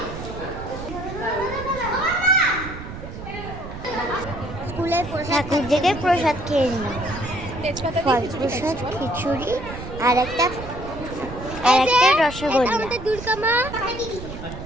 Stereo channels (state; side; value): noise; right; rumble, 10 dB below the sound